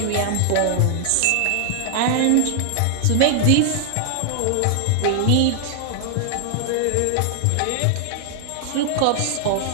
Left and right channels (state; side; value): different; both; correlation 0.00